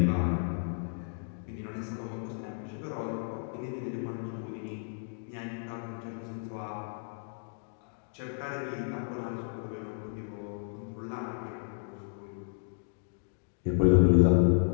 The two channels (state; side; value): silent; right; digital silence